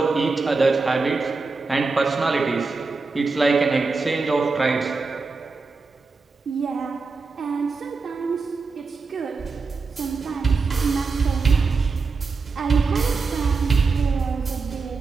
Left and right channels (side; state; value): left; quieter; 4.3 dB